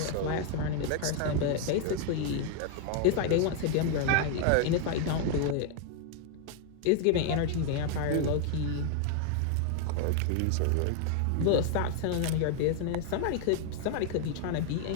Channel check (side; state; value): both; different; correlation 0.00